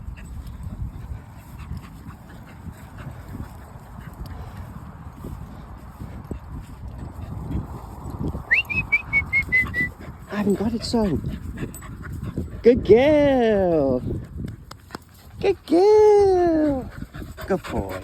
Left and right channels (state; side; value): identical; both; correlation 1.00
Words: I haven't got it, son. Good girl. Good girl. Good boy.